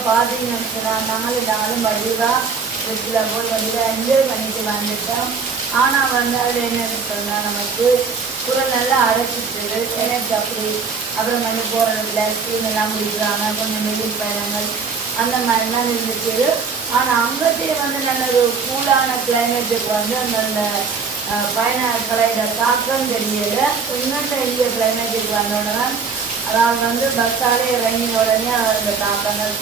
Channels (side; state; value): left; quieter; 5.3 dB